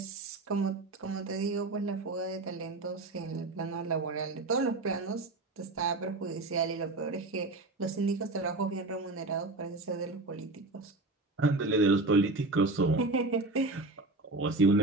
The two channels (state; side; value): quieter; left; 3.1 dB